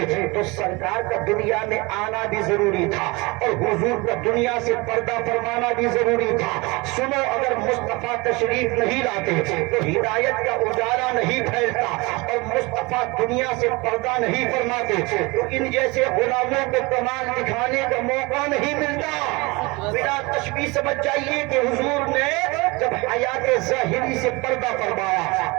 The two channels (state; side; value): quieter; left; 25.1 dB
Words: تو سرکار کا دنیا میں آنا بھی ضروری تھا اور حضور کا دنیا سے پردہ فرمانا بھی ضروری تھا. سنو, اگر مصطفیٰ تشریف نہیں لاتے تو ہدایت کا اجالا نہیں پھیلتا اور مصطفیٰ دنیا سے پردہ نہیں فرماتے تو ان جیسے غلاموں کو کمال دکھانے کا موقع نہیں ملتا. بلا تشبیہ سمجھ جائیے کہ حضور نے جب حیات ظاہری سے پردہ فرمایا